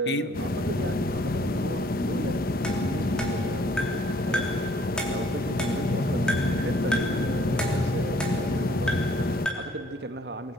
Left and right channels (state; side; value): normal; both; correlation 0.61